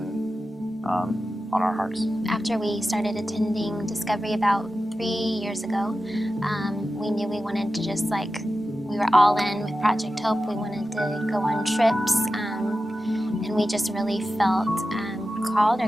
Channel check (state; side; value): normal; both; correlation 0.93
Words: on our hearts. After we started attending Discovery about 3 years ago, we knew we wanted to just we were all in with Project Hope. We wanted to go on trips, and we just really felt called